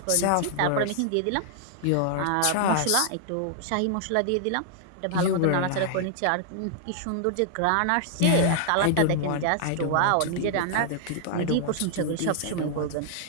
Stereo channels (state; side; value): different; both; correlation 0.00